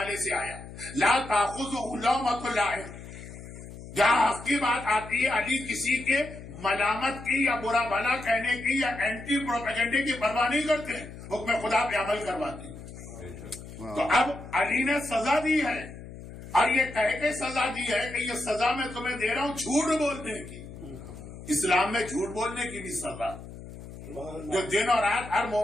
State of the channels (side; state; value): left; noise; hum, 14 dB below the sound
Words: سے آیا، لا تاخذہ لومۃ لائم، جہاں حق کی بات آتی ہے علی کسی کے ملامت کی یا برا بھلا کہنے کی یا اینٹی پروپیگنڈے کی پرواہ نہیں کرتے، حکم خدا پہ عمل کرواتے ہیں۔ تو اب علی نے سزا دی ہے، اور یہ کہہ کے سزا دی ہے کہ یہ سزا میں تمہیں دے رہا ہوں جھوٹ بولنے کی۔ اسلام میں جھوٹ بولنے کی بھی سزا، جو دن اور رات ہر